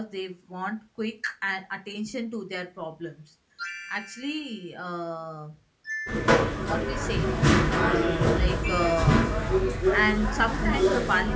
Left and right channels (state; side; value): identical; both; correlation 1.00